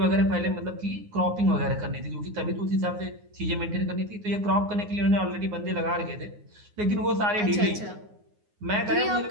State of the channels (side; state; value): left; late; 9.6 ms